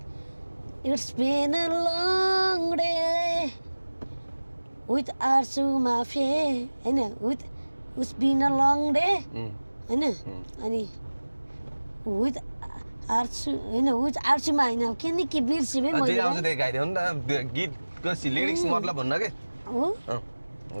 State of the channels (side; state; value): both; inverted; correlation -1.00